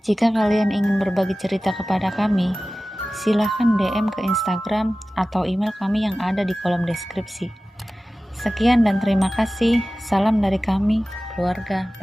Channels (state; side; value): normal; both; correlation 0.96